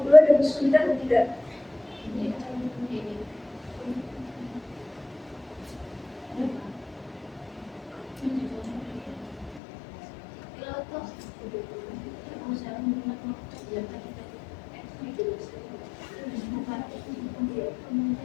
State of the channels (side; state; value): right; drops out; at 9.6 s